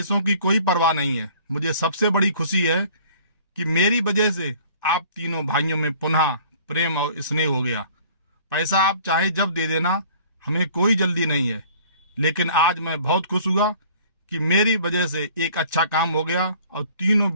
की कोई परवाह नहीं है। मुझे सबसे बड़ी खुशी है कि मेरी वजह से आप तीनों भाइयों में पुनः प्रेम और स्नेह हो गया। पैसा आप चाहे जब दे देना, हमें कोई जल्दी नहीं है। लेकिन आज मैं बहुत खुश हुआ कि मेरी वजह से एक अच्छा काम हो गया और तीनों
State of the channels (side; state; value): both; inverted; correlation -0.52